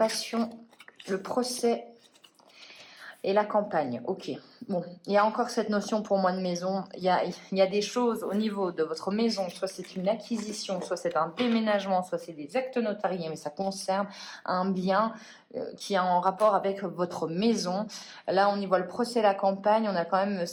le procès et la campagne. Ok. Bon, il y a encore cette notion pour moi de maison. Il y a des choses au niveau de votre maison, soit c'est une acquisition, soit c'est un déménagement, soit c'est des actes notariés, mais ça concerne un bien qui est en rapport avec votre maison. Là, on y voit le procès, la campagne. On a quand même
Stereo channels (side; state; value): both; identical; correlation 1.00